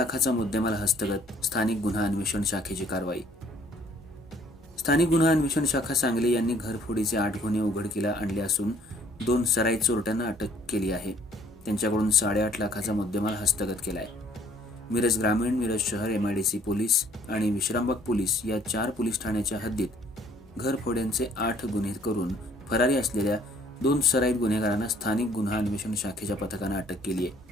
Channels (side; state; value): both; normal; correlation 0.60